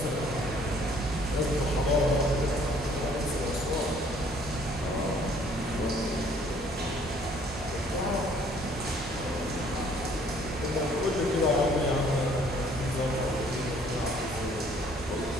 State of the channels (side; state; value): both; normal; correlation 0.60